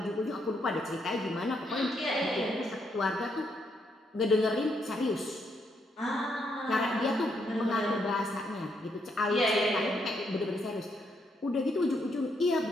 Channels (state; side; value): normal; both; correlation 0.76